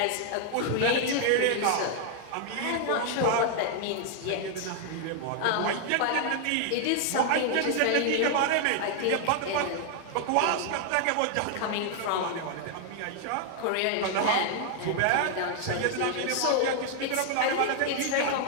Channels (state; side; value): different; both; correlation 0.00